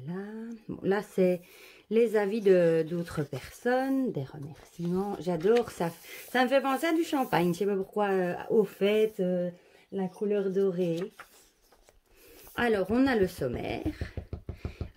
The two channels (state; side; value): identical; both; correlation 1.00